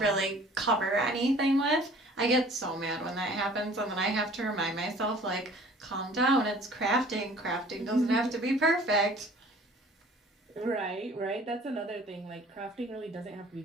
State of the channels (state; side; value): normal; both; correlation 0.50